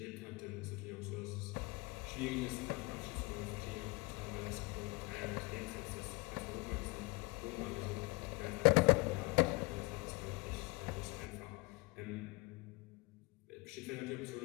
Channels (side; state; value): right; quieter; 26.4 dB